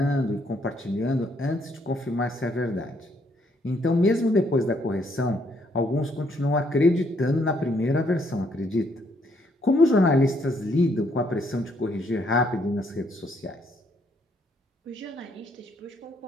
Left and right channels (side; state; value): both; normal; correlation 0.70